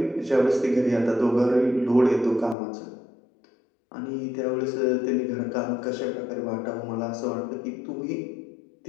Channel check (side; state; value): right; drops out; at 2.6 s